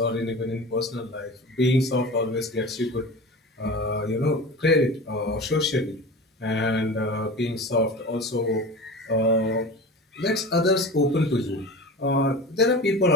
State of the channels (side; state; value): both; normal; correlation 0.33